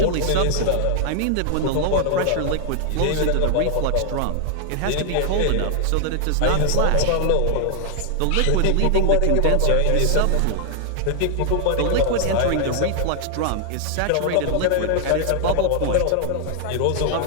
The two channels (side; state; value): both; different; correlation 0.00